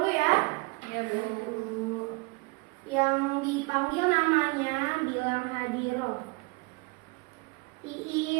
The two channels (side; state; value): left; quieter; 27.6 dB